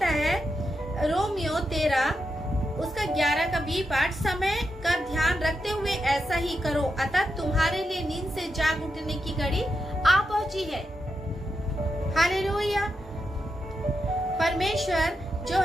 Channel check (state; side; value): normal; both; correlation 0.86